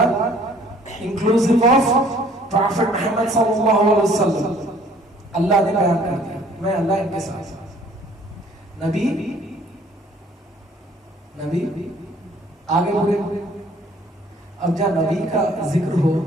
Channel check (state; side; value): normal; both; correlation 0.57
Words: इंक्लूसिव ऑफ प्रॉफिट मोहम्मद सल्लल्लाहु अलैहि वसल्लम। अल्लाह ने बयान कर दिया मैं अल्लाह इनके साथ। नबी नबी आगे बढ़े। अब जब नबी का जिक्र हो,